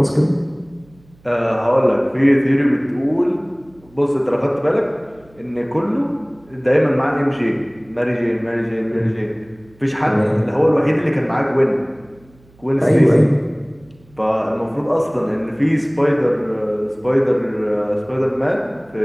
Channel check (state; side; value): noise; right; hum, 29 dB below the sound